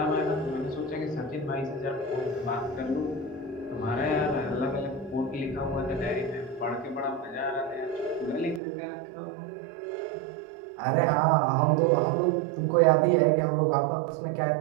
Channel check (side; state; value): left; drops out; at 8.6 s